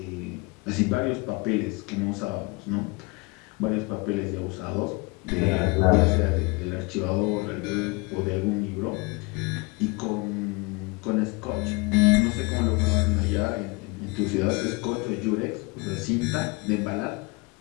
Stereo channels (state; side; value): quieter; right; 27.2 dB